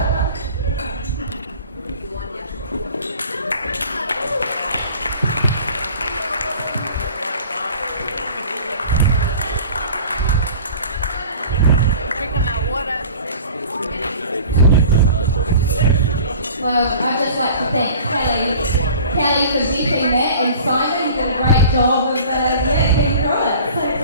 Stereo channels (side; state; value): both; inverted; correlation -0.44